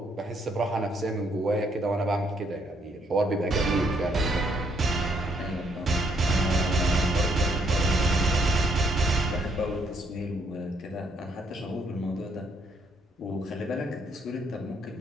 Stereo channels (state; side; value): normal; both; correlation 0.70